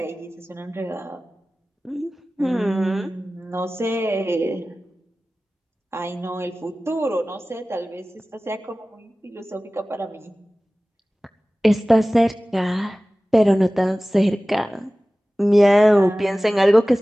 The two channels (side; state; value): both; normal; correlation 0.97